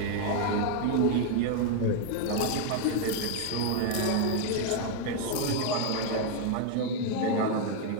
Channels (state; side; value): different; both; correlation 0.01